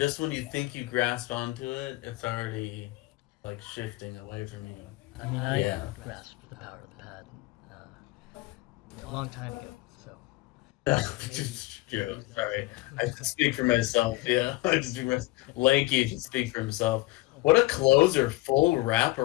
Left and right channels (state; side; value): quieter; right; 20.1 dB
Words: when you think you grasp onto it, it's already like shifting away from you. I mean, I Yeah. grasped the power of the pad a long time ago, so. Yeah, sorry. I can speak for myself. Yeah, I just speak for myself. Lanky should speak for himself. What a closer, full